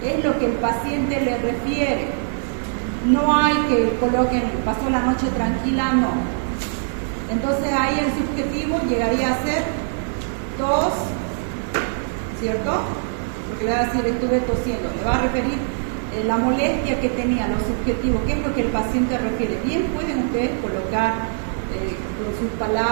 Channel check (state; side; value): silent; left; digital silence